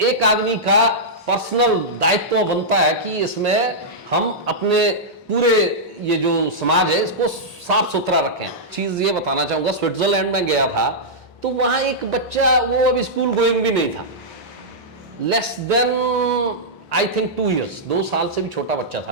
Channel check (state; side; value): normal; both; correlation -0.11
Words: आदमी का पर्सनल दायित्व बनता है कि इसमें हम अपने पूरे ये जो समाज है इसको साफ सुथरा रखें। चीज ये बताना चाहूंगा, स्विट्जरलैंड में गया था, तो वहां एक बच्चा, वो अभी स्कूल गोइंग भी नहीं था, less than I think 2 years, 2 साल से भी छोटा बच्चा